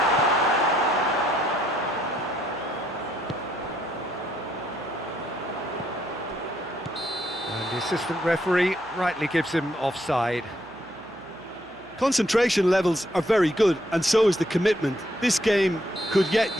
And the assistant referee rightly gives him offside. Concentration levels are very good, and so is the commitment. This game could yet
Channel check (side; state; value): right; noise; hum, 26 dB below the sound